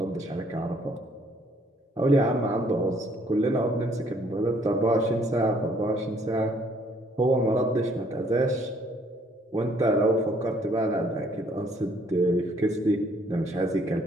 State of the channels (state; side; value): normal; both; correlation 0.64